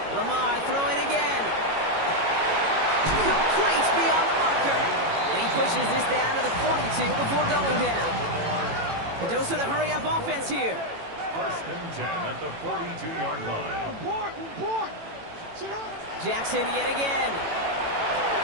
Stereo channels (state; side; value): late; left; 18 ms